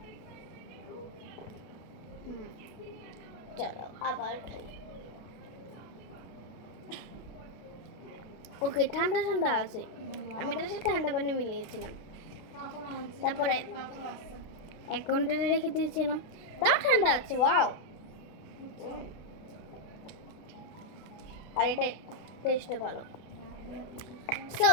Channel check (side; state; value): right; late; 32 ms